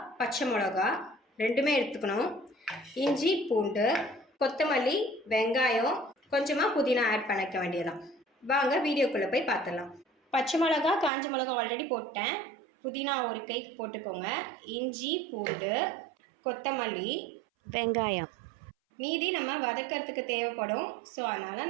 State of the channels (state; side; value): drops out; left; at 11.1 s